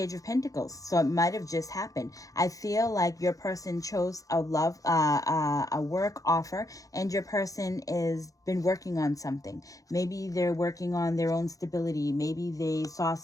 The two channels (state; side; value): late; right; 0.17 ms